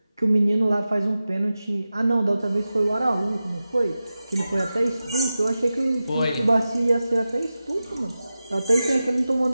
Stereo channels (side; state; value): both; inverted; correlation -0.94